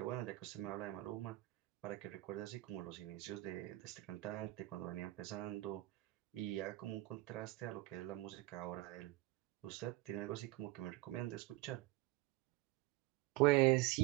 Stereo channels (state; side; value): quieter; left; 18.6 dB